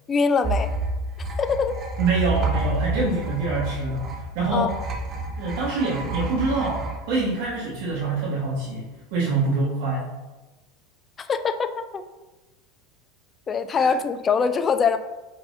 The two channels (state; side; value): normal; both; correlation 0.42